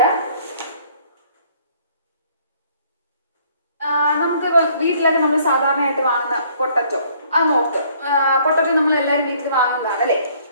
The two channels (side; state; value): both; inverted; correlation -0.60